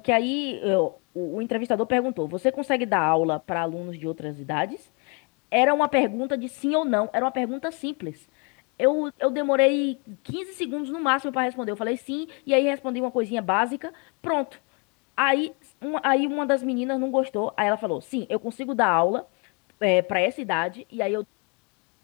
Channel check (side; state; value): right; quieter; 32.4 dB